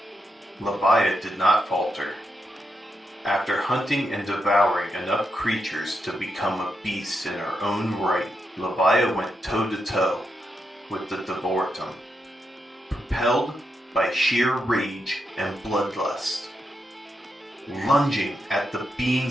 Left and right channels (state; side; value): normal; both; correlation 0.84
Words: Leviathan did not falter. After hunting and devouring enough creatures to become a beast in her own right, Leviathan went toe-to-toe with the Devortum, propelled by sheer rage and bloodlust, lunging at the